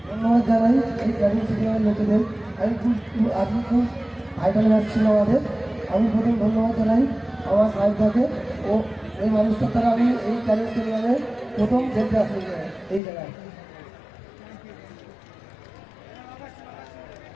ধন্যবাদ জানাই এই ক্যানিং স্টেডিয়ামের লোকেদের। আজকে খুব আইডল ম্যাচ ছিল আমাদের। আমি প্রথম ধন্যবাদ জানাই আমার সাহেবকে ও এই মানুষটার দ্বারা আমি এই ক্যানিং স্টেডিয়ামে প্রথম খেলতে আসি এই জায়গায়।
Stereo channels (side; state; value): right; drops out; at 13.0 s